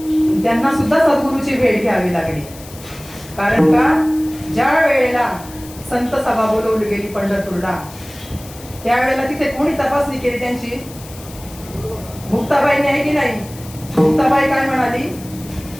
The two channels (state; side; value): noise; left; hiss, 18 dB below the sound